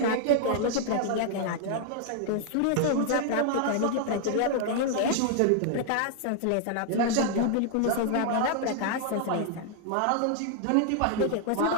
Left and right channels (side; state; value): both; different; correlation 0.00